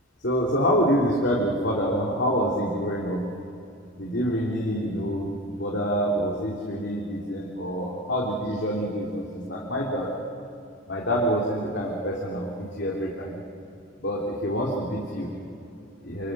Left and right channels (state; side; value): normal; both; correlation 0.28